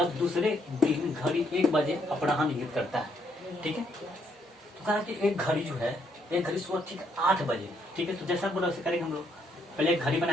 दूसरे दिन घड़ी 1 बजे अपराह्न इंगित करता है, ठीक है। तो कह रहा है कि एक घड़ी जो है, एक घड़ी सुबह ठीक 8 बजे, ठीक है। तो जैसा बोला वैसे करेंगे हम लोग, पहले एक घड़ी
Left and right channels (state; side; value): normal; both; correlation 0.72